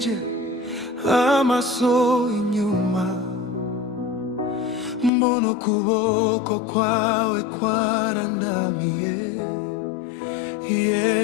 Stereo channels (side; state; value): right; drops out; at 5.1 s